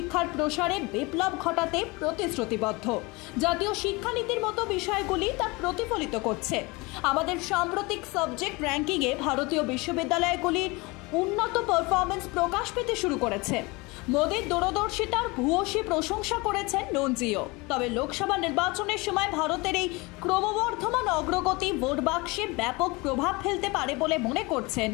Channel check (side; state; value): right; quieter; 25.0 dB